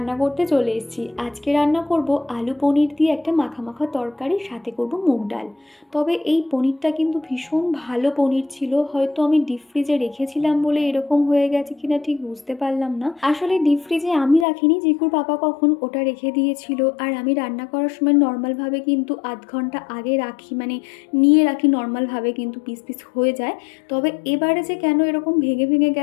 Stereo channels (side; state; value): right; drops out; at 14.5 s